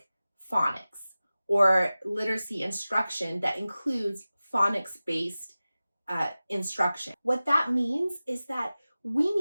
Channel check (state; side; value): inverted; both; correlation -0.97